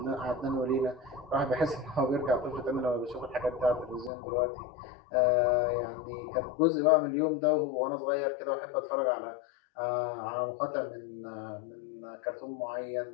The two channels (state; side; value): drops out; right; at 4.1 s